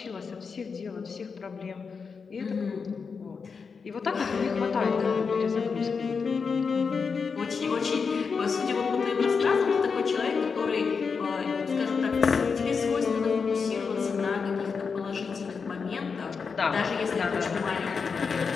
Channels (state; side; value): quieter; right; 5.4 dB